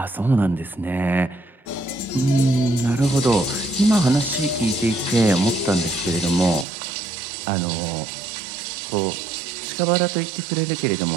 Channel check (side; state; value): left; drops out; at 6.7 s